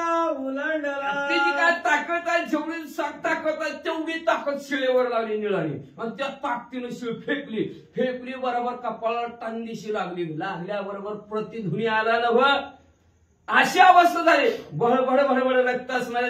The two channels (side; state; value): both; identical; correlation 1.00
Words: उलांडला. तिची काय ताकद ताकद आहे, जेवढी ताकद आहे तेवढी ताकद शिळेवर लावली निळाली आणि त्या ताकदीनं शिळ फेकली बरोबर कपाळाला टांगीशी लागल्याबरोबर प्रतिध्वनी आला नव. अशी अवस्था झाली. भडभड रक्त